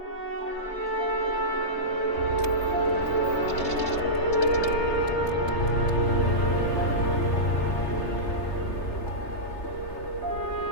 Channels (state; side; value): late; right; 3.3 ms